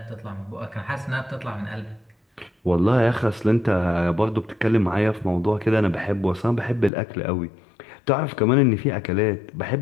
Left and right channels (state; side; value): drops out; right; at 6.9 s